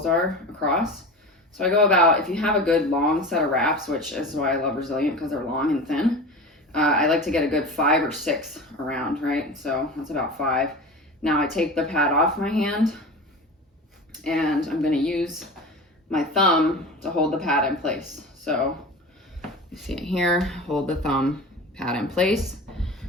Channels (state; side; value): normal; both; correlation 0.31